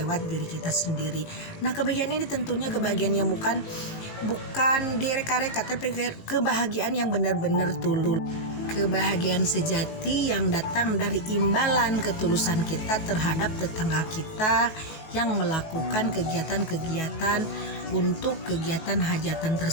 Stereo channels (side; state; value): right; late; 19 ms